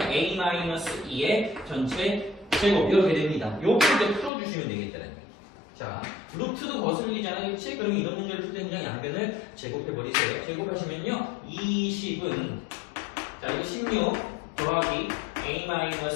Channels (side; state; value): right; drops out; at 4.3 s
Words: a-2의 전체 제곱 이렇게 됩니다. 요거 이제 풀어주시면 되겠다는 얘기. 자, 루트도 거슬리잖아요. 그치? 그럼 이런 문제를 풀 때 그냥 양변을 제곱해버리세요. 제곱하시면요. 20은 자, 이거 16 더하기